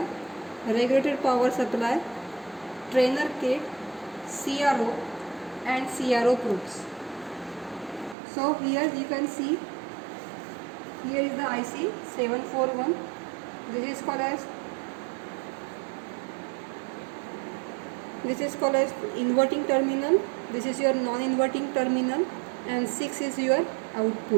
regulated power supply, trainer kit, CRO and CRO probes. So here you can see, here is the IC 741. This is called as inverting terminal. This is your non-inverting terminal, and 6 is your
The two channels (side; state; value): left; drops out; at 8.2 s